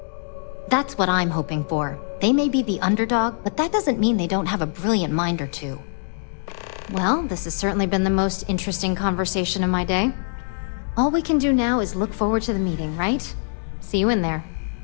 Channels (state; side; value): silent; right; digital silence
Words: That's what I'm hoping for. They may be the underdog, but that doesn't mean they don't have a brilliant mind or two. Well, this has certainly been the most interesting conversation of my day. All we can do now is look forward to the meeting, right? See you in there.